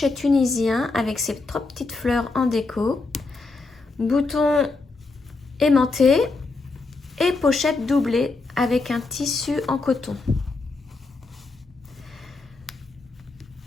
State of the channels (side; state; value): right; quieter; 3.7 dB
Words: tunisien avec ses 3 petites fleurs en déco, boutons aimantés et pochette doublée avec un tissu en coton.